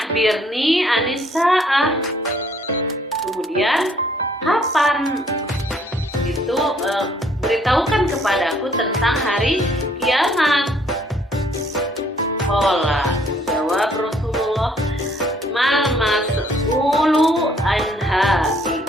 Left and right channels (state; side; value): normal; both; correlation 0.63